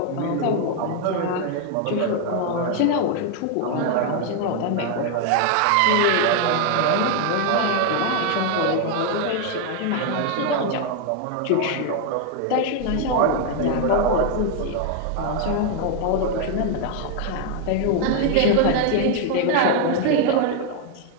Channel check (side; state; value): both; different; correlation 0.00